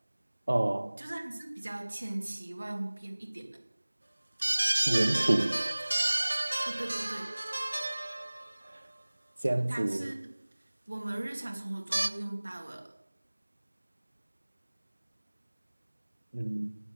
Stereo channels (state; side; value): inverted; both; correlation -1.00